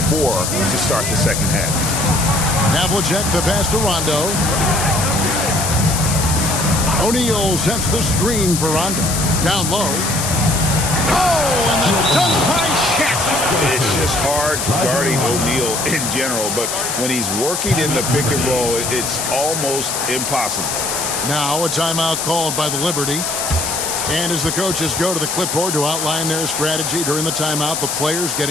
4 to start the second half. Havlicek the pass to Rondo. O'Neal sets the screen for Rondo. Down low. Oh, and the dunk by Shaq. It's just hard guarding O'Neal in general, but when he's working in the pick and roll, it's almost impossible. Now a timeout called by the Liberty. And as the coaches go to the clipboard to outline their strategy during the timeout, the players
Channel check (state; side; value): noise; left; hiss, 2 dB below the sound